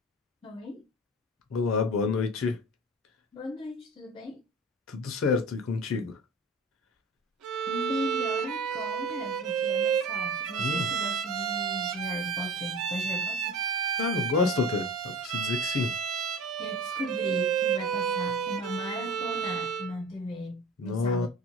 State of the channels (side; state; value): both; normal; correlation 0.35